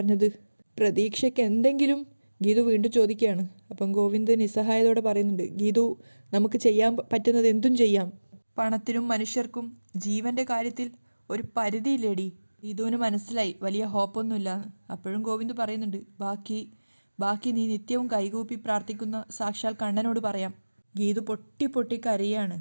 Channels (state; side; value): inverted; both; correlation -1.00